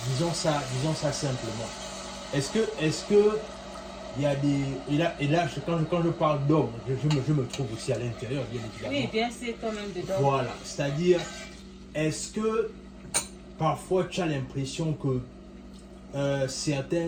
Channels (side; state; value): both; identical; correlation 1.00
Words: disons ça simplement. Est-ce que il y a des... Et là quand je parle d'homme, je me trouve aussi à l'intérieur, bien évidemment. Oui, bien sûr, quand même dedans. Voilà, c'est-à-dire, est-ce que parfois tu as l'impression que